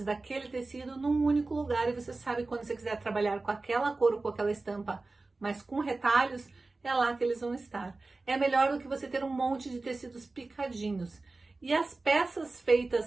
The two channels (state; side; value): quieter; left; 3.4 dB